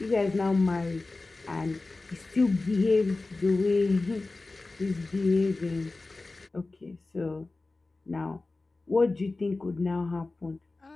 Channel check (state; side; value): quieter; right; 3.3 dB